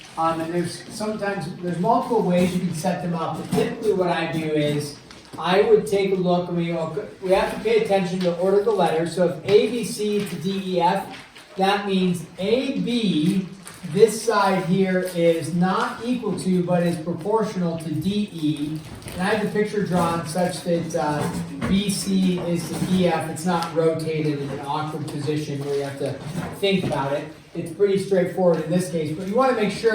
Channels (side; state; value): both; identical; correlation 1.00